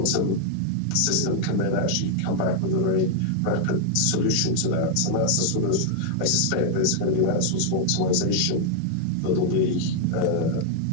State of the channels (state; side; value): different; both; correlation 0.00